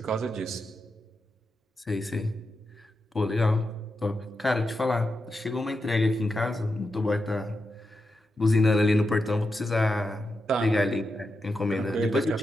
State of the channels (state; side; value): normal; both; correlation 0.87